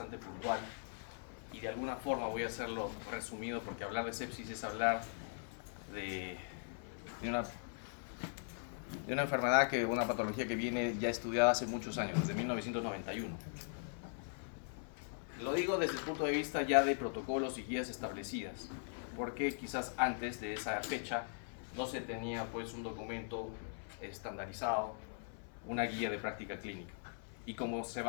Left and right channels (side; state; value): right; silent; 51 dB below the other